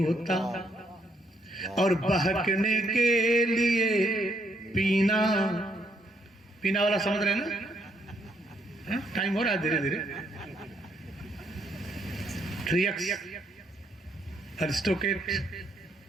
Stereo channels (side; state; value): both; normal; correlation 0.73